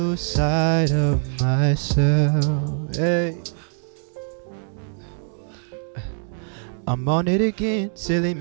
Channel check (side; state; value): left; silent; digital silence